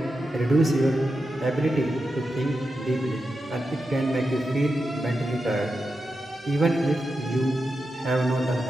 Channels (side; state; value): both; normal; correlation 0.89